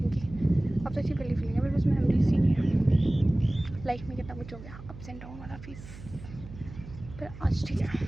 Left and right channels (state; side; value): noise; right; hum, 15 dB below the sound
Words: की। अब तो अच्छी वाली फीलिंग है, मेरे पास मेमोरीज ही नहीं है। लाइफ में कितना कुछ हो गया, अप्स एंड डाउन वाला फेस, पर आज ठीक है।